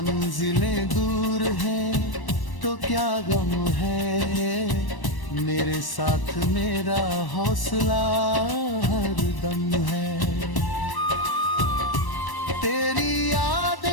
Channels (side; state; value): right; late; 1.1 ms